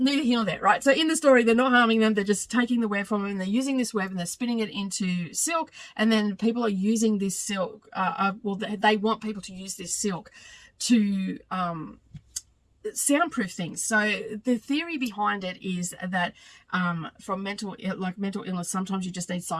here nor there, right? So in the story, they're not harming them. They're just taking the web from them, and they're using this web and they're spinning it into silk, and then people are using this silk. They want people to use this silk to soundproof things. So the theory behind it is that from mental illness, sometimes you just need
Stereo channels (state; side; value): identical; both; correlation 1.00